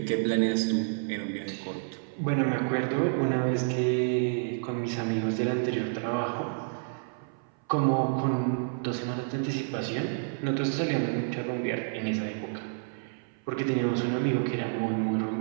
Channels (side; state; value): left; silent; 58 dB below the other